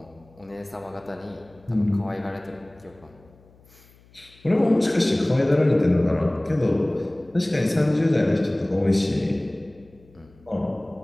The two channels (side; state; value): left; noise; hum, 28 dB below the sound